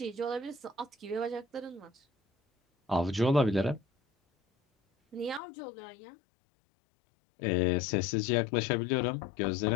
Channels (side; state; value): right; drops out; at 5.4 s